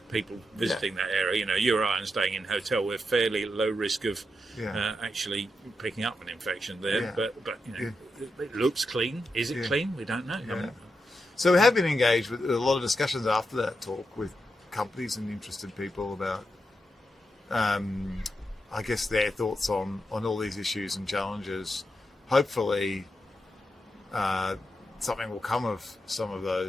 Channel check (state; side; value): normal; both; correlation 0.85